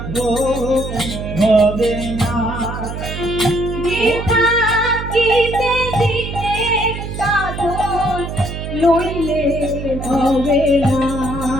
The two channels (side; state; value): right; noise; hum, 7 dB below the sound